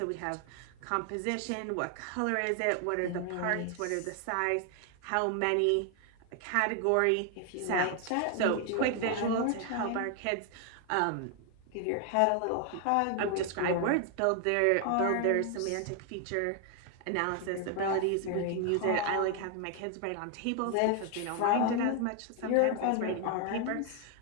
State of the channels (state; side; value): different; both; correlation 0.00